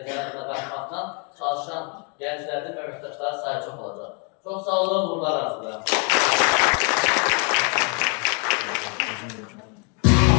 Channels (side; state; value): right; quieter; 36.7 dB